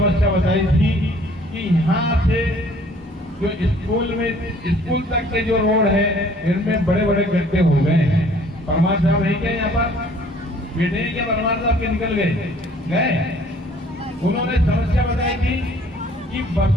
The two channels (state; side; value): normal; both; correlation 0.56